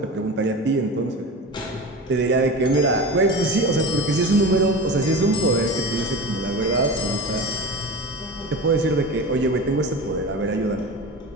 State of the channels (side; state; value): both; normal; correlation 0.30